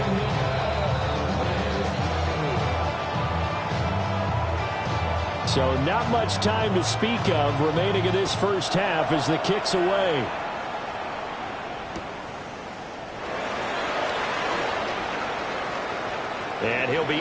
So not much time to speak of remaining in this first half as the kick's away. And he'll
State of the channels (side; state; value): both; identical; correlation 1.00